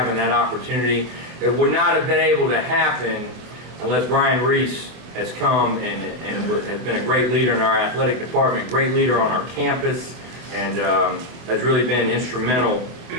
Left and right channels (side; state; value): left; late; 24 ms